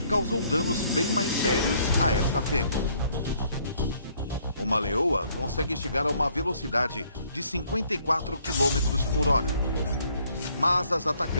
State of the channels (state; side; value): inverted; both; correlation -0.65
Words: causou danos bem mais sérios a esta fêmea. Uma leoa consegue chegar a uma velocidade de 54 km por hora. Mas as